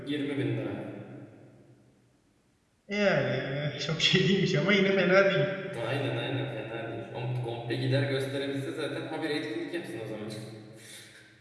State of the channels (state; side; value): identical; both; correlation 1.00